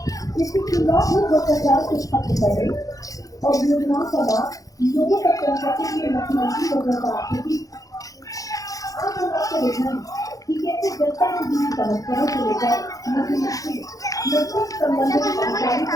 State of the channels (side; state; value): right; late; 0.17 ms